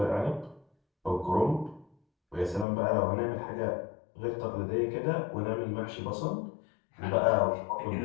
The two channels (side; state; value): right; drops out; at 2.7 s